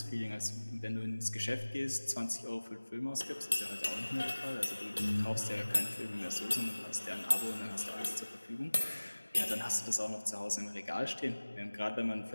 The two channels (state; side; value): inverted; both; correlation -1.00